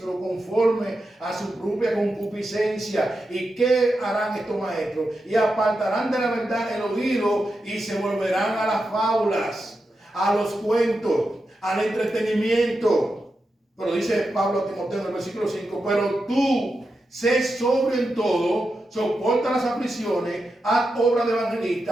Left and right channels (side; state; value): both; normal; correlation 0.88